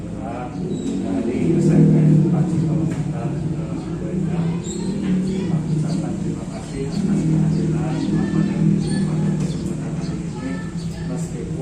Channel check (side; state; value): both; identical; correlation 1.00